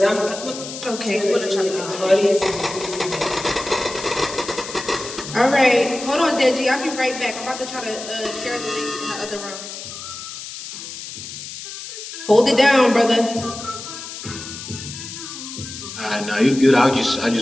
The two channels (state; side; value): noise; left; hiss, 10 dB below the sound